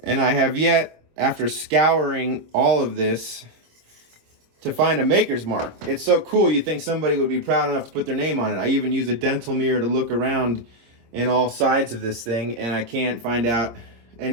And I have yet, after scouring all of this, to find a maker's mark. It's so cool, you think somebody would be proud enough to put their name on it. I even used a dental mirror to look around in all sides of this thing, and I can't find out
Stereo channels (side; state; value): left; late; 26 ms